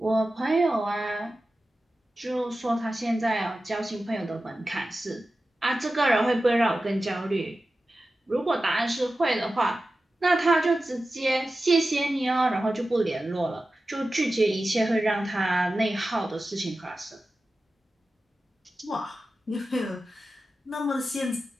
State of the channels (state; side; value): normal; both; correlation 0.94